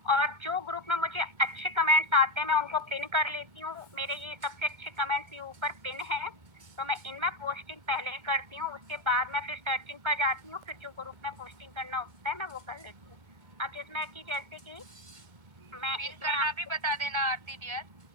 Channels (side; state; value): left; late; 2.2 ms